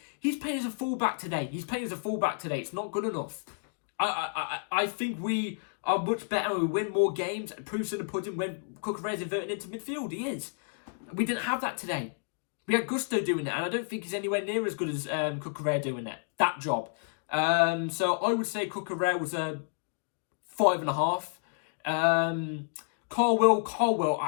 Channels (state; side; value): silent; right; digital silence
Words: He's playing as a fullback today. It's not good enough. I think we are much better and we win more games. Proofs in the pudding when Cucurella's inverting into midfield. He is. We didn't have that today. We had Gusto doing it, and I don't think he's anywhere near as good as Cucurella doing it. That job. So I would say Cucurella was a 5.5. Colwill,